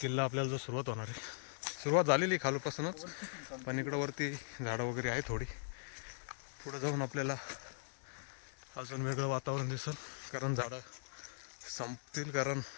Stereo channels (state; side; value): silent; right; digital silence